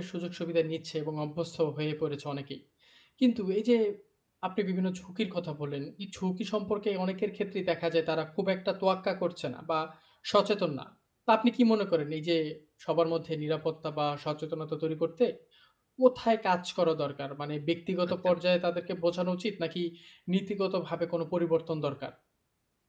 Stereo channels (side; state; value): both; identical; correlation 1.00